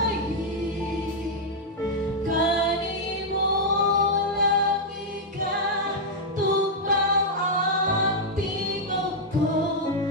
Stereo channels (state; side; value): normal; both; correlation -0.04